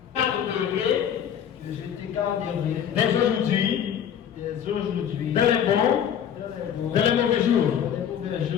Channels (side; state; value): right; quieter; 9.0 dB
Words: Dès aujourd'hui, dans les bons, dans les mauvais jours,